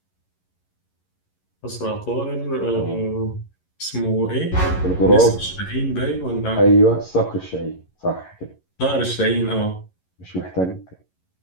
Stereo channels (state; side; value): late; right; 11 ms